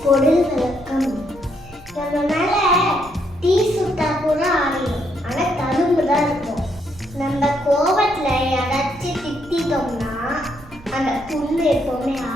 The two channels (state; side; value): normal; both; correlation 0.74